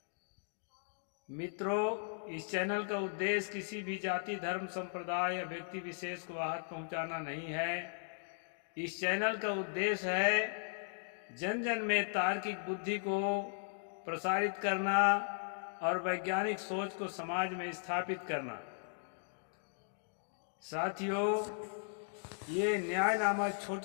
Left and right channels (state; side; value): silent; right; digital silence